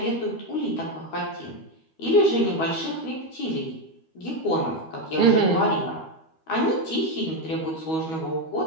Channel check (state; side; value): late; right; 12 ms